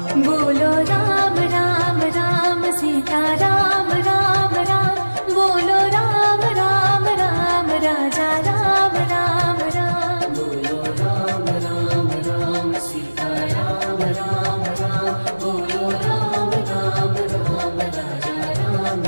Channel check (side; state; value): both; inverted; correlation -1.00